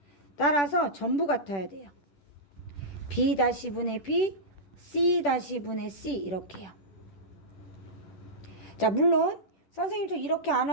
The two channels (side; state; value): right; late; 10 ms